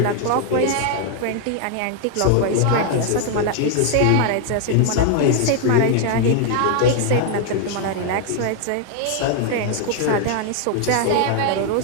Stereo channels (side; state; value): both; different; correlation 0.00